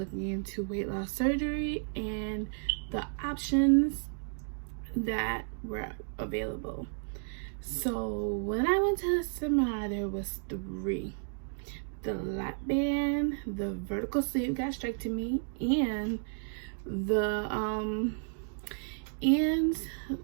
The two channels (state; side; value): silent; left; digital silence